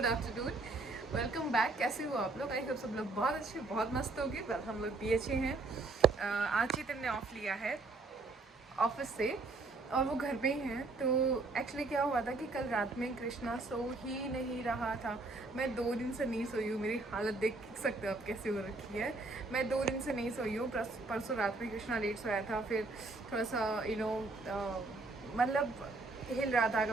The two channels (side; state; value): left; quieter; 3.4 dB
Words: afternoon. Welcome back. कैसे हो आप लोग? आई होप सब लोग बहुत अच्छे बहुत मस्त होंगे। वेल हम लोग भी अच्छे हैं। आज चेतन ने ऑफ लिया है ऑफिस से और वो घर पे ही हैं। तो एक्चुअली क्या हुआ था कि कल रात में कृष्णा सो ही नहीं रहा था। मैं 2 दिन से नहीं सोई हूँ। मेरी हालत देख सकते हो आप कैसे हो रखी है। मैं 2 दिन से नहीं सोई हूँ। परसों रात में कृष्णा लेट सोया था, फिर थोड़ा सा मतलब हिल रहा था